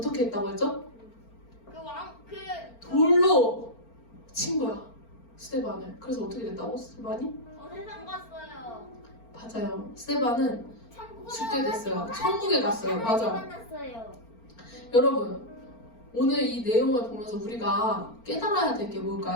했다고 했죠? 돌로 친 거야 스데반을. 그래서 어떻게 됐다고? 스데반이? 세상 갔어요. 맞아요. 스데반은 죽게 됐어요. 천국에 갔어요. 맞아. 만났어요. 여러분 오늘 이 내용을 보면서 우리가 깨달아야 될 게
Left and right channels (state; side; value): late; right; 4.4 ms